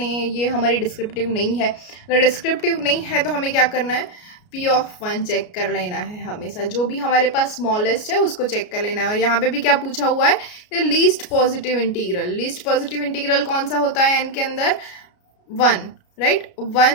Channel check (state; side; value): late; right; 33 ms